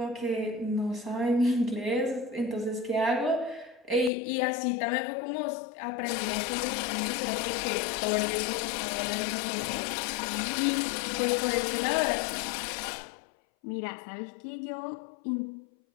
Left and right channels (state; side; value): drops out; right; at 4.1 s